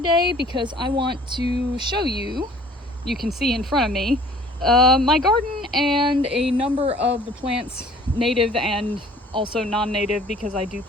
because I want to show you, you can see in front of me, my garden and a number of the plants, native and also non-native because I do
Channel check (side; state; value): both; normal; correlation 0.52